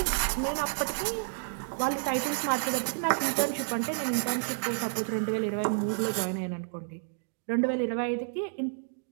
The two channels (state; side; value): silent; left; digital silence